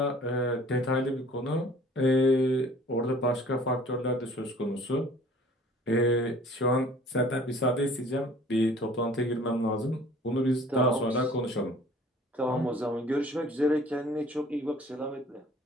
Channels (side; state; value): both; normal; correlation 0.51